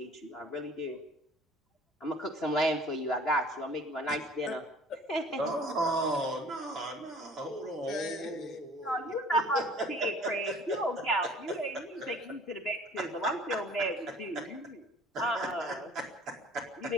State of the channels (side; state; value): both; normal; correlation 0.50